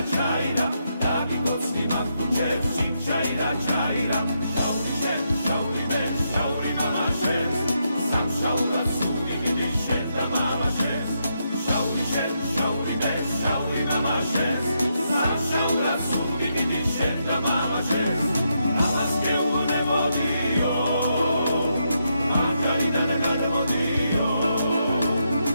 ჩაირა დაგიგოცნი მაგუჩებს ჩიმჩაირა ჩაირა შაური მე შაური მამაშებს სამშაურად სული დიდი შენ და მამაშებს შაური მე შაური მამაშებს სამშაურად სული დიდი შენ და მამაშებს ამას გეუბნებოდიო მანჯალიდან გადმოდიო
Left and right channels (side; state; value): both; inverted; correlation -0.81